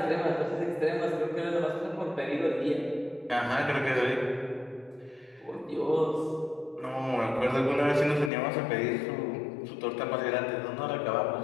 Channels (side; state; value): right; drops out; at 8.3 s